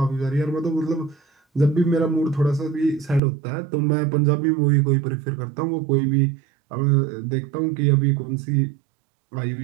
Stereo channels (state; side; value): drops out; left; at 3.2 s